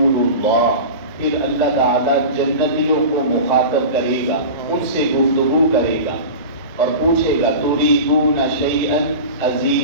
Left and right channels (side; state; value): both; inverted; correlation -0.31